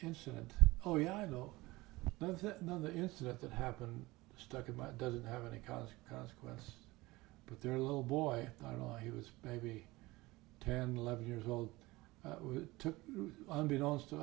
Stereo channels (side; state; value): left; quieter; 20.6 dB